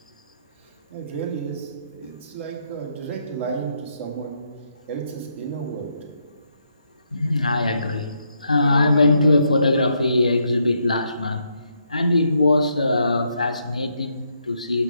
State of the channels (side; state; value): both; inverted; correlation -0.77